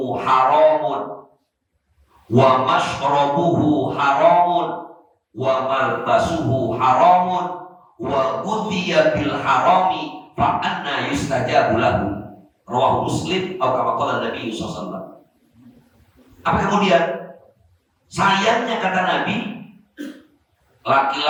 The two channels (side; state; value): both; identical; correlation 1.00